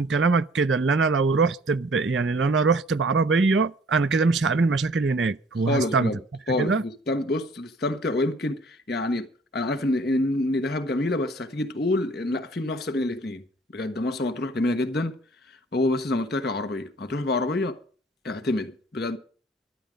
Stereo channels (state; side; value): normal; both; correlation 0.55